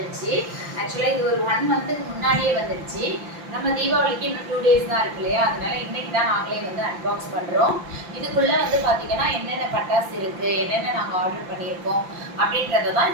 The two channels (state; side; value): late; left; 5.8 ms